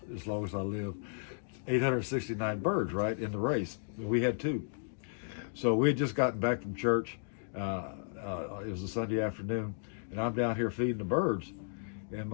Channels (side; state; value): right; silent; digital silence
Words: as long as I live. 869 birds, right, in the race. We had 2. So we had just gotten back from church. It was a Sunday afternoon, and I'm down here feeding the birds. And